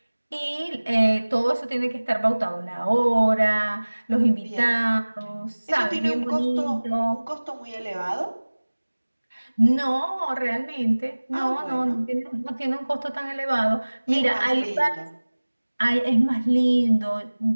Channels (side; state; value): both; inverted; correlation -1.00